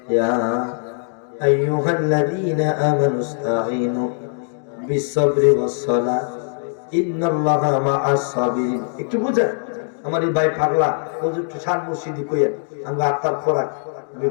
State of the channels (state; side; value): silent; right; digital silence